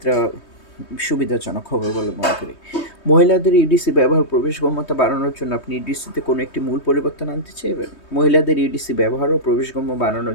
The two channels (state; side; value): late; right; 3.2 ms